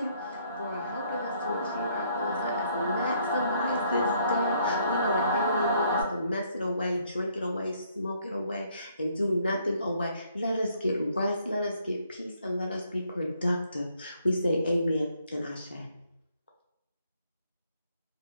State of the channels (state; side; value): inverted; both; correlation -0.68